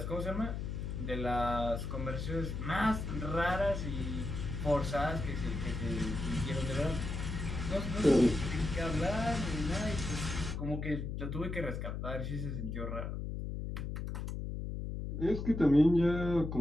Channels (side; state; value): left; noise; hum, 4 dB below the sound